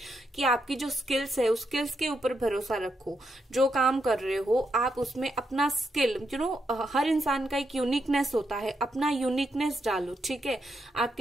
कि आपकी जो स्किल्स है उस स्किल्स के ऊपर भरोसा रखो। जो काम कर रहे हो आप उसमें अपना स्किल, हर इंसान का एक यूनिकनेस होता है, अपना यूनिकनेस डालो। ठीक है,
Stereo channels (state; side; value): normal; both; correlation 0.81